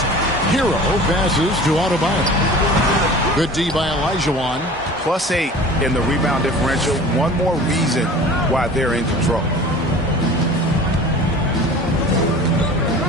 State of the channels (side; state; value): both; normal; correlation 0.41